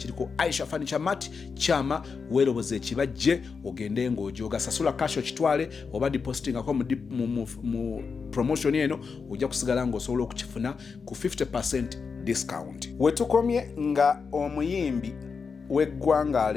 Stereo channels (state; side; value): quieter; right; 5.3 dB